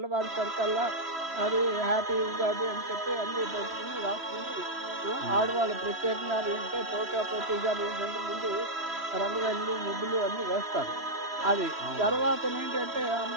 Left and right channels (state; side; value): late; left; 3.1 ms